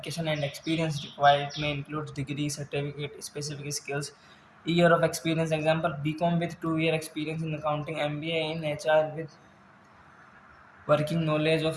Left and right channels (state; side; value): identical; both; correlation 1.00